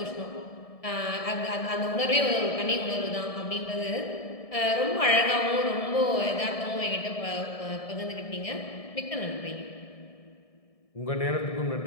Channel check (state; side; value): late; right; 1.7 ms